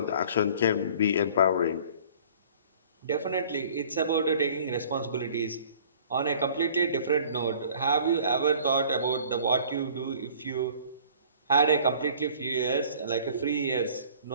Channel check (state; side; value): inverted; both; correlation -0.50